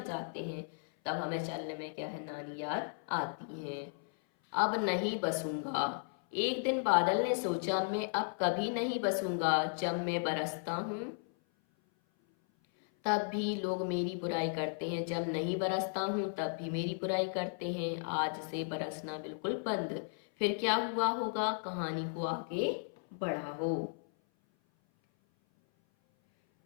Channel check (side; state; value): right; silent; 54 dB below the other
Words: जाते हैं। तब हमें चलने में क्या है, नानी याद आती है। अब नहीं बसूंगा, एक दिन बादल ने सोचा मैं अब कभी नहीं बसूंगा। जब मैं बरसता हूँ तब भी लोग मेरी बुराई करते हैं, जब नहीं बरसता हूँ तब भी मेरी बुराई करते हैं। आज से बरसना बिल्कुल बंद, फिर क्या हुआ होगा, कहानी को आगे बढ़ाओ।